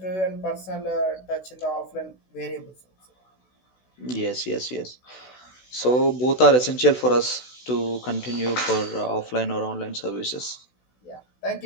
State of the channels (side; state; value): right; late; 16 ms